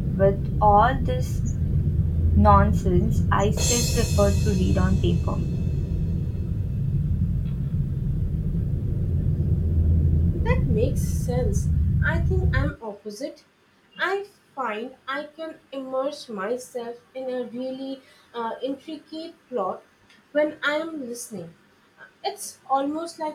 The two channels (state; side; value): identical; both; correlation 1.00